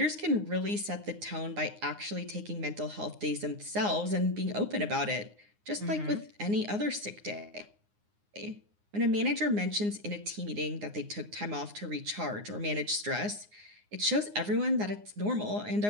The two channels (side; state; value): left; late; 9.7 ms